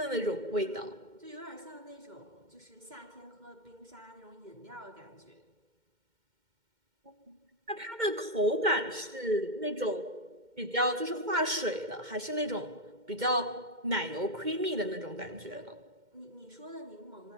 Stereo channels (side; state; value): left; late; 2.1 ms